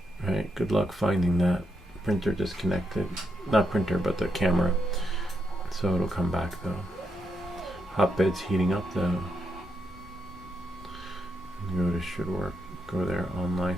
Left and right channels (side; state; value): both; normal; correlation 0.82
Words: right? Good luck finding that. Printer disconnected. Not printer, but the camera. So it'll come back though. Hotbed's heating up though. Go to should work. Go there online.